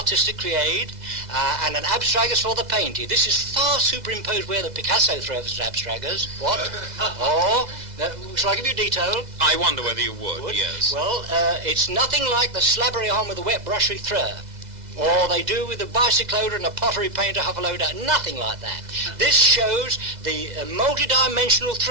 create, and an abstractus for the painting. This is far superimposed where the Picasso throws abstractors. What? Shall I give you detail? I wonder whether you would. Yes. Well, it's nothing like the slobbery on with a wet brushy throw. Or they do with a bicycloder and a pottery painter huffaloader, nothing like that. This shows the multi-dimensional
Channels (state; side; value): late; left; 2.0 ms